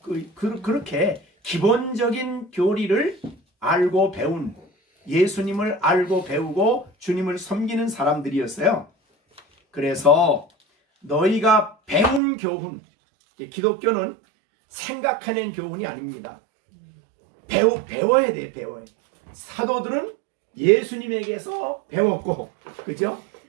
그렇게 기본적인 교리를 알고 배운, 예수님을 알고 배우고 주님을 섬기는 사람들이었어요. 그래서 너희가 배운 교훈, 기독교는 생각해낸 교훈이 아닙니다. 배워야 돼. 사도들은 예수님에게서 배웠고, 그죠?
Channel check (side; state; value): left; drops out; at 12.2 s